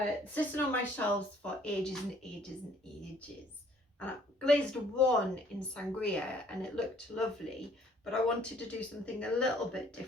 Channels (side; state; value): both; normal; correlation 0.60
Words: Sitting on my shelves for ages and ages and ages. And I glazed one in sangria and it looked lovely, but I wanted to do something a little bit